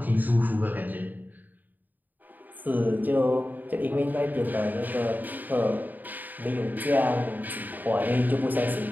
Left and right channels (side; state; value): left; late; 0.086 ms